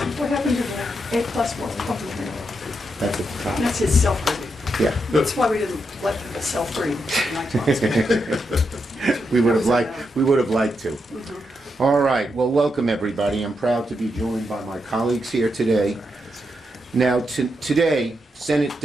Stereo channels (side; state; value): both; normal; correlation 0.83